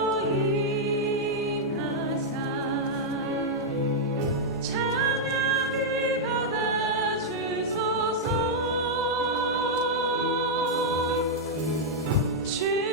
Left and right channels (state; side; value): normal; both; correlation -0.04